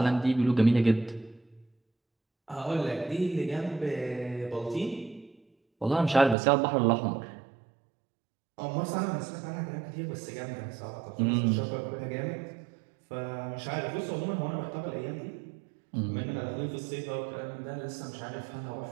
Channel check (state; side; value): drops out; left; at 6.4 s